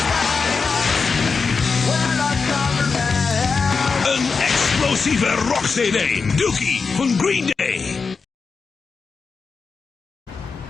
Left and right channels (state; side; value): quieter; right; 4.9 dB